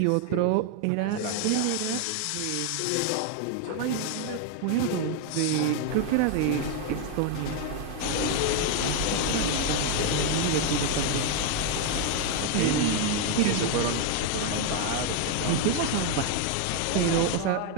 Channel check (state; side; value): different; both; correlation 0.01